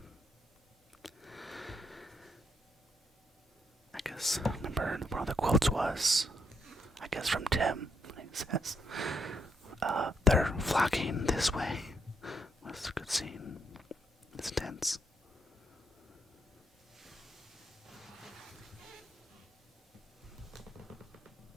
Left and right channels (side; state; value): both; normal; correlation 0.76